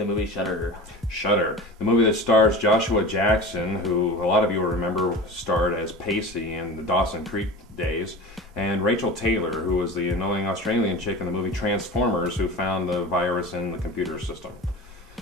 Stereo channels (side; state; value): both; normal; correlation 0.33